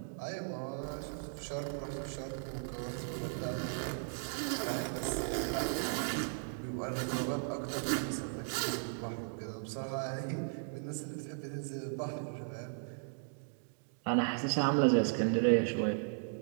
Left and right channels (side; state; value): left; silent; digital silence